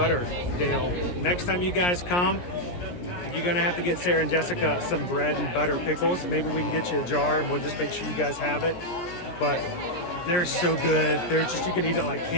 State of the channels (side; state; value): right; late; 17 ms